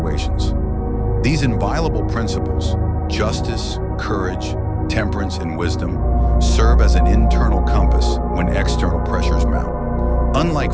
These inviolable principles, justice, courage, temperance, and wisdom, serve as an internal compass when external pressures mount. Unlike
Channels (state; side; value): identical; both; correlation 1.00